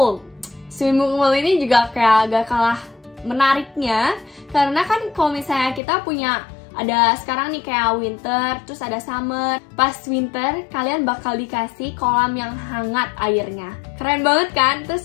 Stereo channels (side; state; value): right; drops out; at 5.8 s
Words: Swimming pool ini juga kayak gak kalah menariknya, karena kan kalau misalnya kita punya ada sekarang nih kayak winter, terus ada summer. Pas winter, kalian bakal dikasih kolam yang hangat airnya. Keren banget kan?